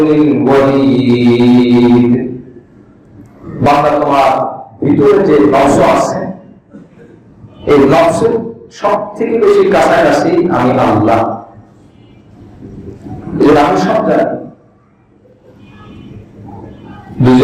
الْوَرِيدِ। বান্দা তোমার ভিতরে যে নফস আছে এই নফসের সব থেকে বেশি কাছাকাছি আমি আল্লাহ। আমি সব জানি।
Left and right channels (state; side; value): identical; both; correlation 1.00